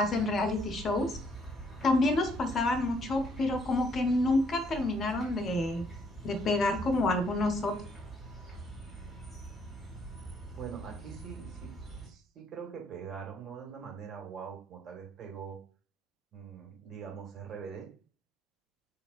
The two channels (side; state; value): both; normal; correlation 0.68